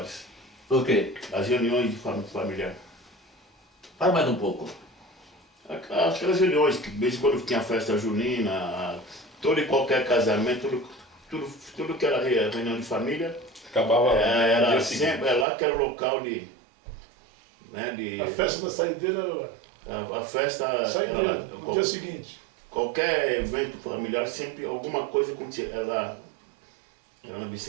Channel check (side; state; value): left; drops out; at 15.5 s